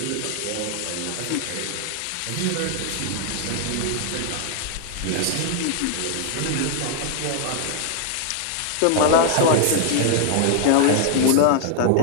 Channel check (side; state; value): both; different; correlation 0.00